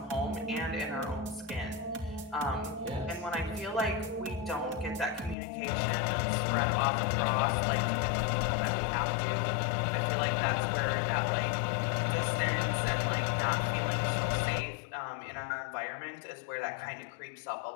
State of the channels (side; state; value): right; drops out; at 5.4 s